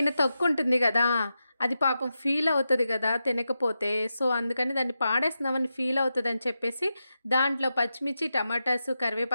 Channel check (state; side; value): inverted; both; correlation -0.89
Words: తొక్కుంటుంది గదా! అది పాపం ఫీల్ అవుతది గదా! తినకపోతే. సో, అందుకని దాన్ని పాడేస్తున్నామని ఫీల్ అవుతదని చెప్పేసి దాంట్లో పచ్చిమిర్చి, టమాటాసు,